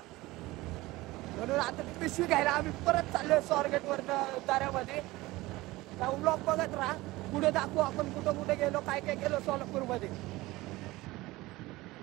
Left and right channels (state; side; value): quieter; left; 19.6 dB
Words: म्हणून आता ती पिशवी घ्यायला आम्ही परत चाललोय स्वारगेट वरनं दऱ्यामध्ये. ब्लॉग बघत राहा. पुढे दाखवू आपण कुठं कुठे गेलो, काय काय केलं सोलापूर मध्ये.